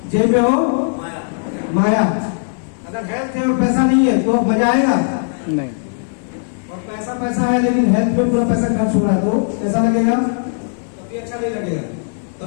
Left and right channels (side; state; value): right; silent; digital silence